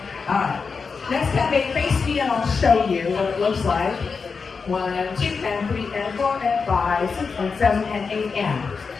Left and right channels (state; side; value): quieter; right; 5.1 dB